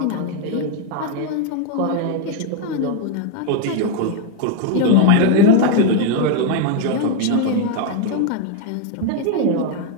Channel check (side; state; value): both; different; correlation 0.01